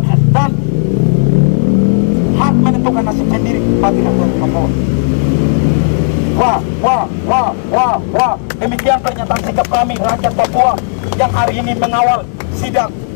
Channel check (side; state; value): right; silent; 72 dB below the other